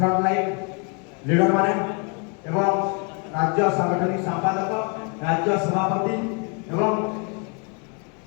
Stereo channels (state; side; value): quieter; right; 35.9 dB